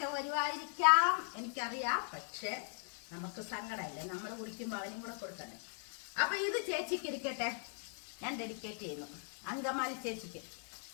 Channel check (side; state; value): right; silent; 52 dB below the other